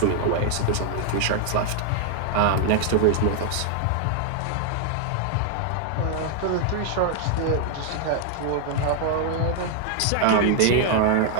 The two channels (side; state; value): both; different; correlation 0.00